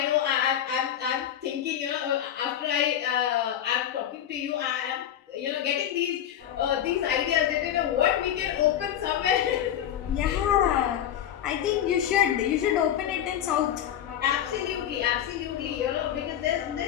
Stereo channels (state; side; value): quieter; right; 10.5 dB